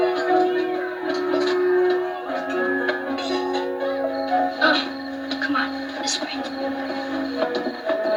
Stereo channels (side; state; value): both; identical; correlation 1.00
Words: Come on, this way.